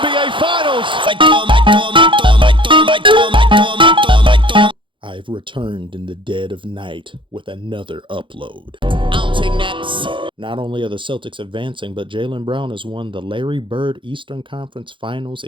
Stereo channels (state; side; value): late; left; 0.24 ms